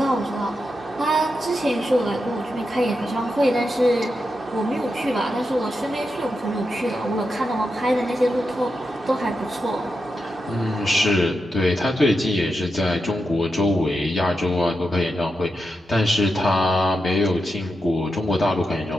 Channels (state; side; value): normal; both; correlation 0.87